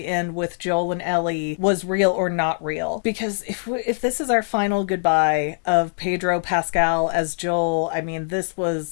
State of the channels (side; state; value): right; silent; digital silence